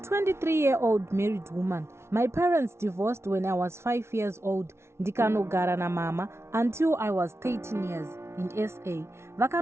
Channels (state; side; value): late; left; 0.13 ms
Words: married woman. My parents divorced when I was 5 years old. Ndikanogara na mama until I was 13 years in SA.